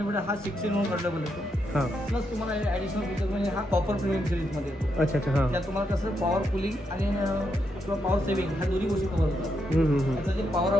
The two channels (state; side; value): normal; both; correlation 0.81